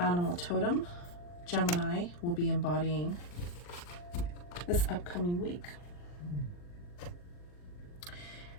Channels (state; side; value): late; right; 40 ms